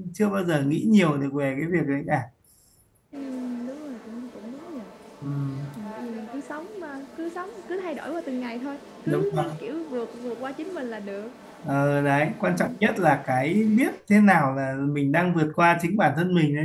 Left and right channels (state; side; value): identical; both; correlation 1.00